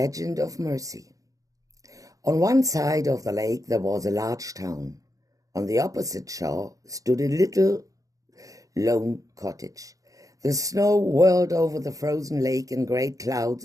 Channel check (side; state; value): left; late; 0.17 ms